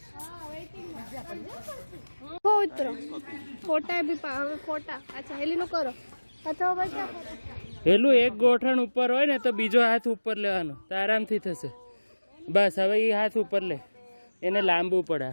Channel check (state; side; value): inverted; both; correlation -1.00